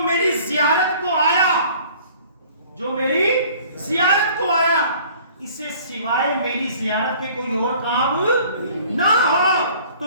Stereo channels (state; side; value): inverted; both; correlation -0.51